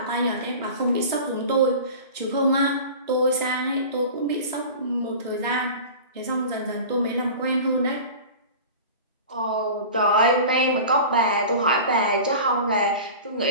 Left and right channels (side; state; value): both; inverted; correlation -0.36